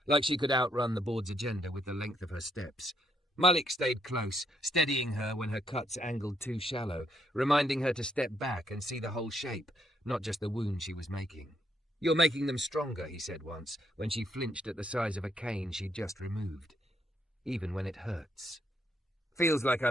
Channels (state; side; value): normal; both; correlation 0.74